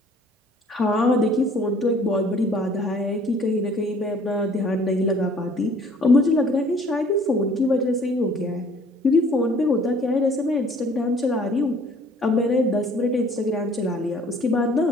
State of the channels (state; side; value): normal; both; correlation 0.55